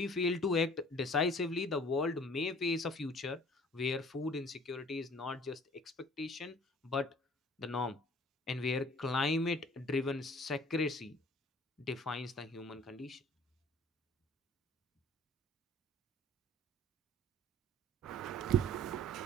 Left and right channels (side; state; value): both; normal; correlation 0.51